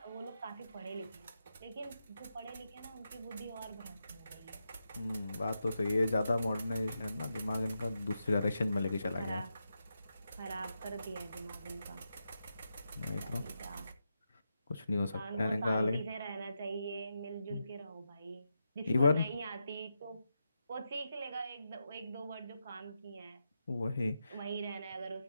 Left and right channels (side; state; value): both; inverted; correlation -0.86